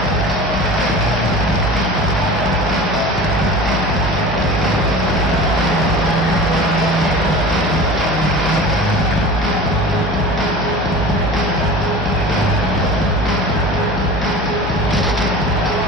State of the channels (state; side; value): normal; both; correlation 0.36